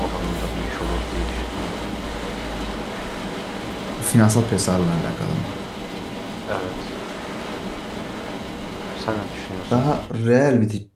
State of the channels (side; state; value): both; identical; correlation 1.00